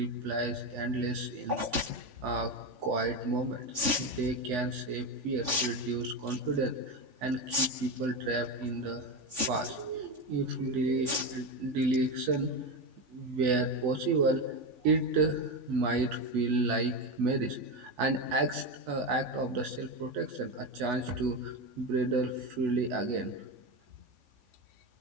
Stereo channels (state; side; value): late; left; 3.5 ms